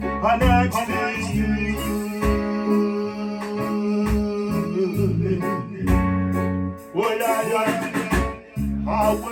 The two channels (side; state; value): both; identical; correlation 1.00